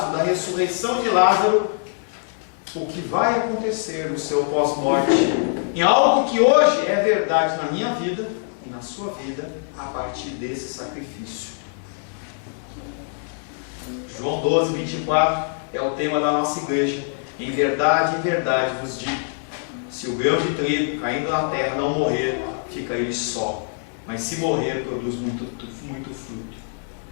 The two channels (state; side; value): silent; right; digital silence